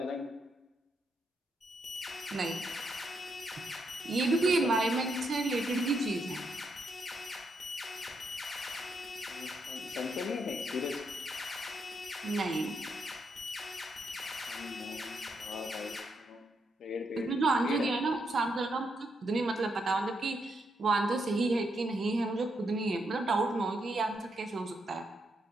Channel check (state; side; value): normal; both; correlation 0.79